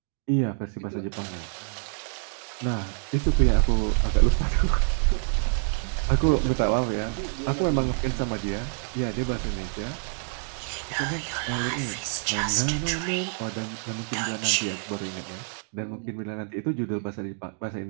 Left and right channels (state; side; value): silent; left; 55 dB below the other